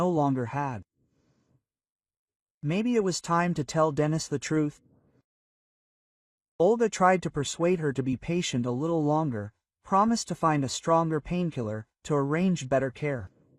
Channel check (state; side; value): identical; both; correlation 1.00